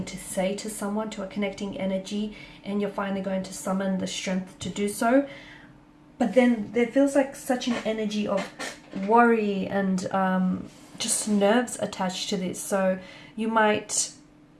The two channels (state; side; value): identical; both; correlation 1.00